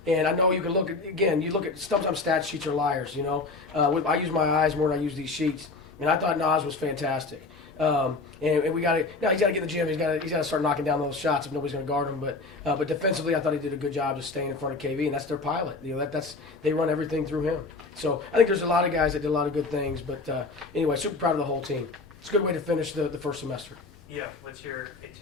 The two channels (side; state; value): right; quieter; 3.7 dB